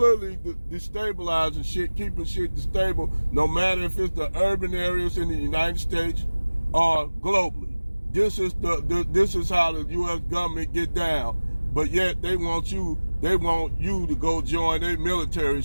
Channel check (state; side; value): inverted; both; correlation -1.00